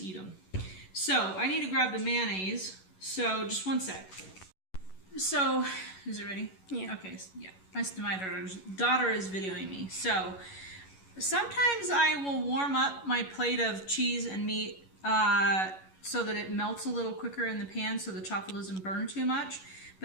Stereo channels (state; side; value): late; right; 11 ms